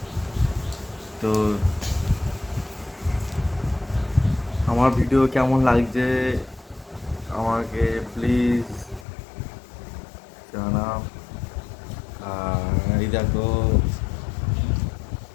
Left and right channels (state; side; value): drops out; right; at 9.1 s